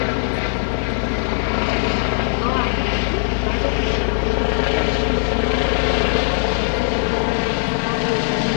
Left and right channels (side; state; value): right; silent; digital silence